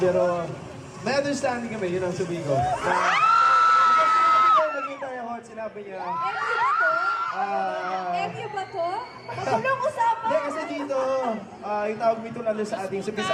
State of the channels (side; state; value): both; identical; correlation 1.00